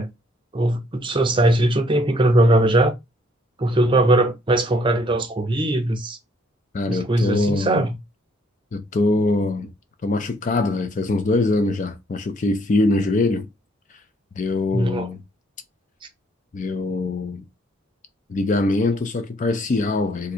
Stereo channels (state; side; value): normal; both; correlation 0.65